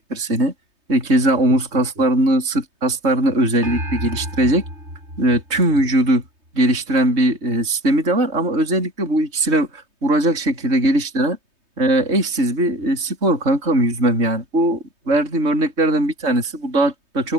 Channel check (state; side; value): late; left; 3.2 ms